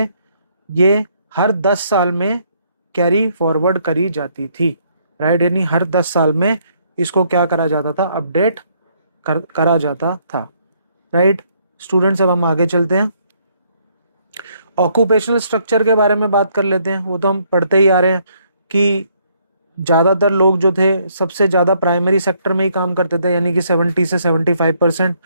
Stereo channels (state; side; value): inverted; both; correlation -0.69